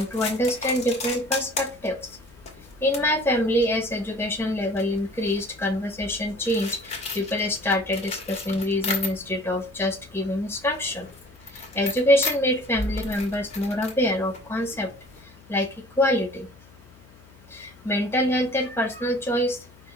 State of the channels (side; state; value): left; noise; hum, 24 dB below the sound